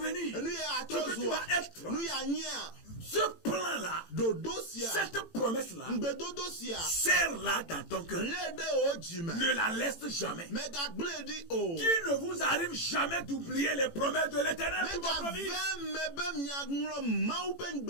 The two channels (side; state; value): right; late; 18 ms